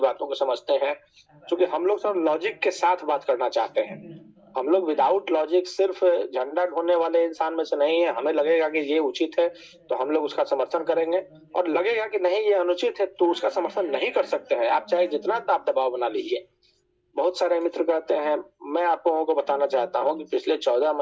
बातों को समझते हैं। क्योंकि हम लोग सब लॉजिक के साथ बात करना चाहते हैं। हम लोग विदाउट लॉजिक सिर्फ़ झंडा ढोने वाले इंसान में से नहीं है। हमें लगेगा कि ये उचित है, तो हम लोग उसका समर्थन करेंगे और लगेगा कि नहीं ये अनुचित है, तो उसका समर्थन नहीं कर सकते हैं। आप चाहे जितना दाब-दबाव बना लीजिए। बहुत सारे मित्र कहते हैं मैं आप लोगों को बताना चाहता हूँ कि पिछले 14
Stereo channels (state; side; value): identical; both; correlation 1.00